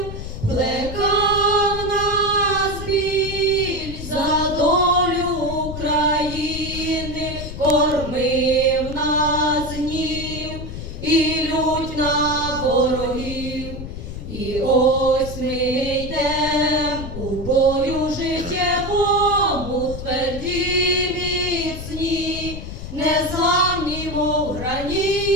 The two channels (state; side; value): noise; left; rumble, 9 dB below the sound